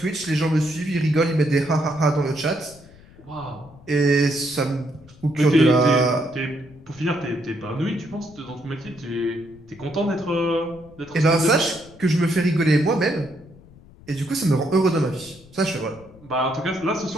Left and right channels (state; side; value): noise; left; rumble, 23 dB below the sound